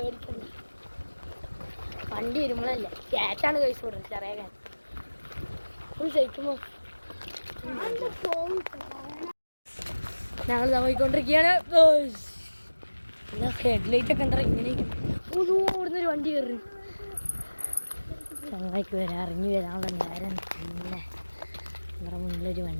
വണ്ടി വരുമ്പോഴല്ലേ ക്യാറ്റാണ് കഴിച്ച് കൊടുക്കുന്നത് ചെറിയ കാറ്റ് ഫുൾ സൈക്കുമ്പോൾ ഞങ്ങൾ പോയിക്കൊണ്ടിരിക്കുകയാണ്. എന്നാ ഹെഡ്ലൈറ്റൊക്കെ ഉണ്ടാ ഇങ്ങനെ ഓടുന്നൊരു വണ്ടി കയറി ചങ്ങായിക്ക് വരാൻ ഇറങ്ങി വരാനുള്ള നേരം. പിന്നെ നമ്മുടെ മുന്നിലൊരു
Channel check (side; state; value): both; inverted; correlation -1.00